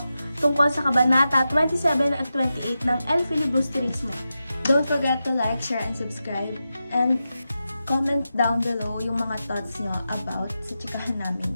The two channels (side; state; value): both; inverted; correlation -0.90